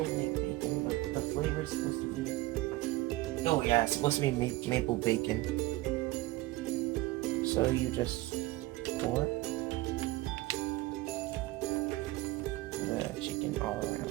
like bacon, but the flavor is supposed to be... Oh yeah, it's supposed to be maple bacon. So you just pour the chicken all around.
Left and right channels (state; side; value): quieter; left; 18.9 dB